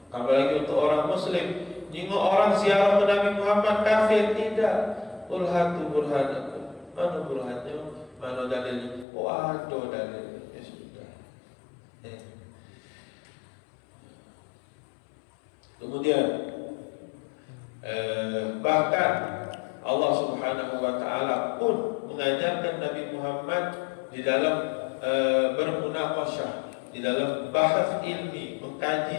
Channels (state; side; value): drops out; right; at 9.1 s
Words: Apalagi untuk orang muslim, jika orang ziarah ke Nabi Muhammad kafir, tidak. Qul hatu burhanakum. Mana burhannya? Mana dalilnya? Oh ada dalilnya. Ya sudah. Kemudian bahkan Allah Subhanahu wa taala pun mengajarkan Nabi Muhammad di dalam bermunaqasyah, di dalam bahas ilmi, mengkaji